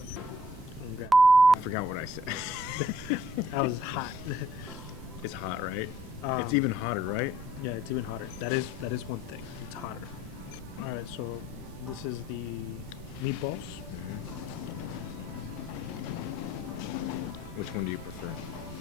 I forgot what I said. That was hot. It's hot, right? It's even hotter, right? Yeah, it's even hotter. That is one thing. It's hotter. All right, so this is the meatballs. Which one do you prefer?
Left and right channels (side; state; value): right; noise; rumble, 12 dB below the sound